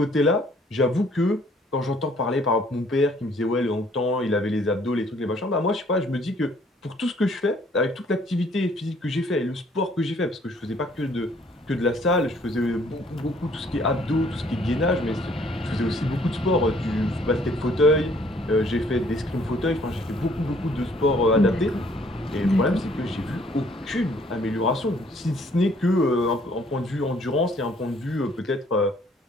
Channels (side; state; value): both; normal; correlation 0.61